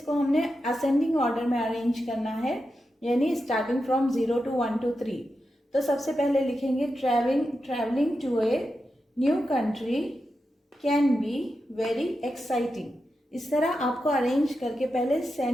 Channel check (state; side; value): normal; both; correlation 0.89